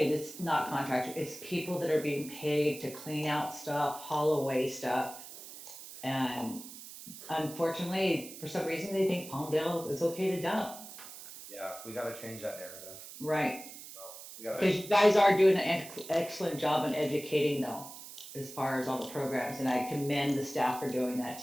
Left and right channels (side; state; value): right; noise; hiss, 14 dB below the sound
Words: it's not contractors, it's people that are being paid to clean out stuff, haul away stuff. And unfortunately, for some reason, they think Palmdale is okay to dump. Yeah, we got to change that narrative. Right. We got Because you guys are doing an excellent job in educating though, as far as all the programs, and I commend the staff for doing that